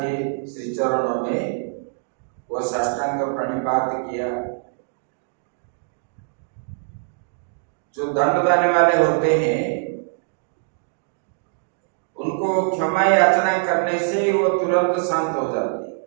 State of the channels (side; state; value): left; silent; digital silence